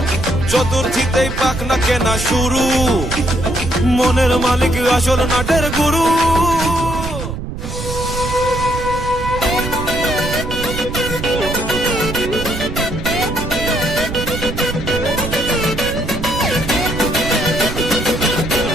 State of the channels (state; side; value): noise; right; rumble, 6 dB below the sound